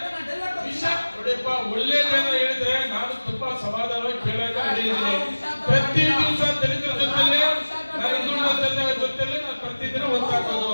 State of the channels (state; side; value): inverted; both; correlation -1.00